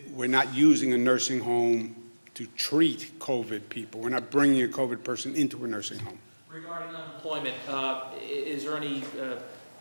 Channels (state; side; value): inverted; both; correlation -1.00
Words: We're not using a nursing home to treat COVID people. We're not bringing a COVID person into a nursing home. Regarding unemployment, is there any